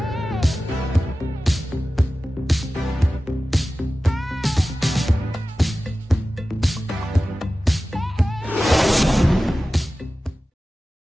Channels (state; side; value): normal; both; correlation 0.95